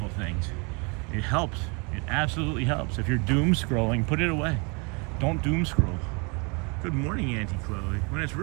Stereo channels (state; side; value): quieter; left; 32.0 dB